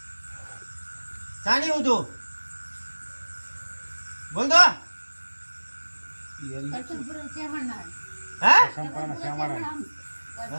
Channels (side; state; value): both; inverted; correlation -1.00